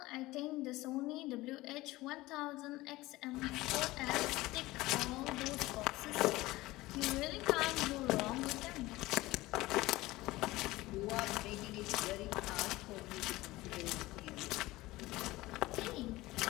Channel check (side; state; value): right; quieter; 19.0 dB